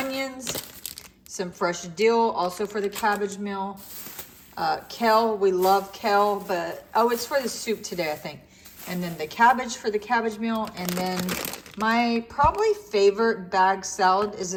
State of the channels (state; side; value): identical; both; correlation 1.00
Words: Some fresh dill, also for the cabbage meal. Kale, we love kale, but, it's for the soup today, I think. And then the cabbage for the cabbage meal. And then my probably favorite bag salad is